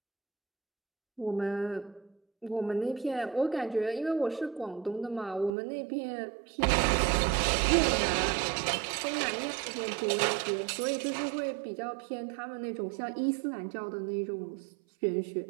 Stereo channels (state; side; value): drops out; left; at 5.5 s